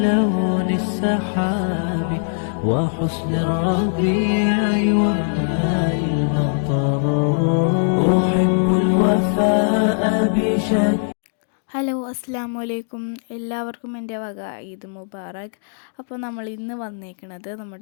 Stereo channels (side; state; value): right; silent; digital silence